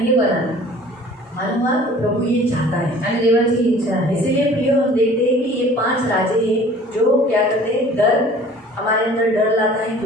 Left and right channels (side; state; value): both; normal; correlation 0.48